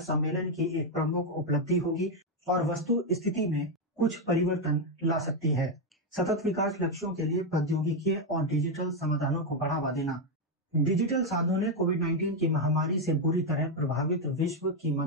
की एक प्रमुख उपलब्धि होगी और वस्तु स्थिति में कुछ परिवर्तन ला सकती है। सतत विकास लक्ष्यों के लिए प्रौद्योगिकी और डिजिटल समाधानों को बढ़ावा देना। डिजिटल साधनों ने कोविड-19 की महामारी से बुरी तरह प्रभावित विश्व की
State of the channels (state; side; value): normal; both; correlation 0.03